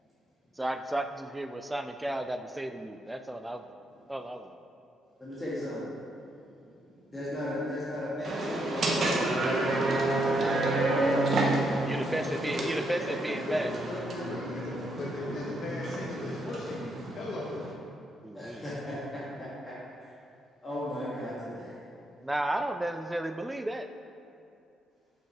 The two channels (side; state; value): both; normal; correlation 0.77